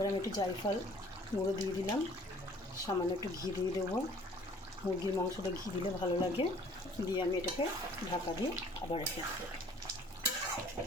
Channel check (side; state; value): both; normal; correlation 0.54